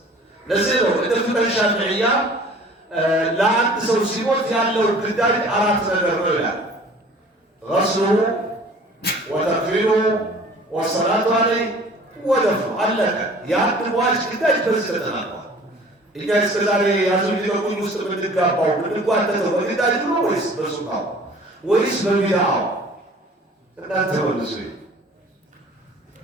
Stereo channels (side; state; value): both; normal; correlation 0.49